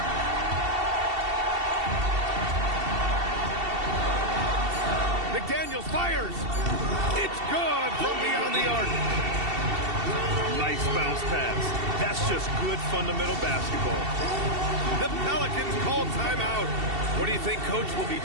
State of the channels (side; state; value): left; late; 2.7 ms